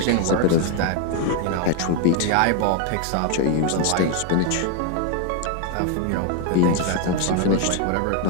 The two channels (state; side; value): different; both; correlation 0.01